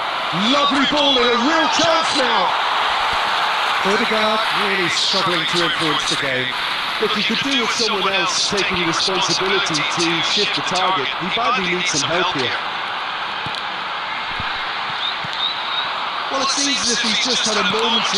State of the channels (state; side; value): identical; both; correlation 1.00